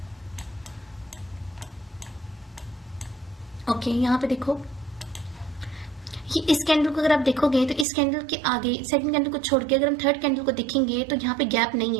ओके यहाँ पे देखो, ये इस कैंडल को अगर आप देखोगे तो इस कैंडल के आगे सेकंड कैंडल को छोड़ के अगर हम थर्ड कैंडल को देखेंगे तो यहाँ पे गैप नहीं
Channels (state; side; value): drops out; left; at 7.9 s